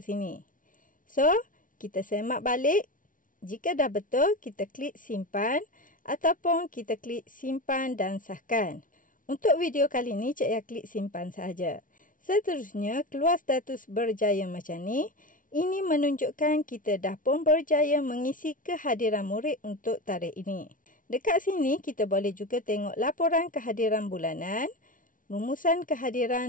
sini. So, kita semak balik. Jika dah betul, kita klik simpan ataupun kita klik simpan dan sahkan. Untuk video kali ni, Cik Ya klik simpan sahaja. Seterusnya, keluar status berjaya macam ni. Ini menunjukkan kita dah pun berjaya mengisi kehadiran murid untuk tarikh ini. Dekat sini, kita boleh juga tengok laporan kehadiran bulanan, rumusan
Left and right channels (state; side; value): late; right; 0.38 ms